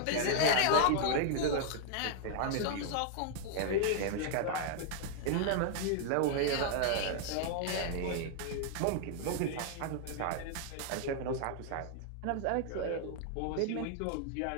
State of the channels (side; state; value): both; different; correlation -0.01